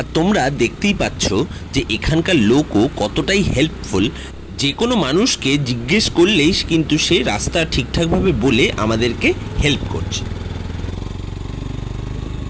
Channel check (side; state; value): both; identical; correlation 1.00